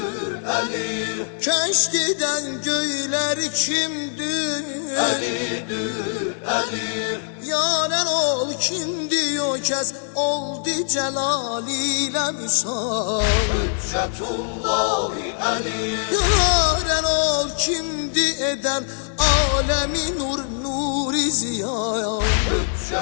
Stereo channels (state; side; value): silent; right; digital silence